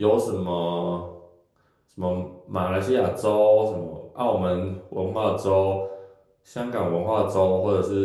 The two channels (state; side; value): identical; both; correlation 1.00